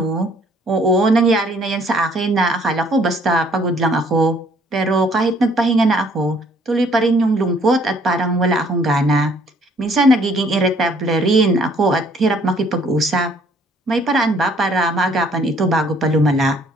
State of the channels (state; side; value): normal; both; correlation 0.61